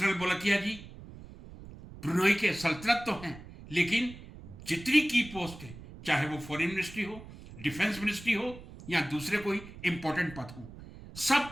बोलकिया जी ब्रुनेई के सल्तनत तो हैं, लेकिन जितनी की पोस्ट है, चाहे वो फॉरेन मिनिस्ट्री हो, डिफेंस मिनिस्ट्री हो या दूसरे कोई इंपॉर्टेंट पद हो,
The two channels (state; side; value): noise; right; rumble, 16 dB below the sound